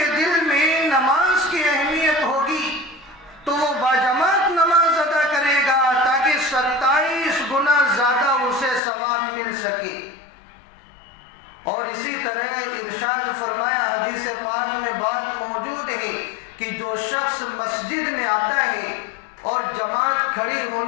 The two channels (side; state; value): right; drops out; at 8.8 s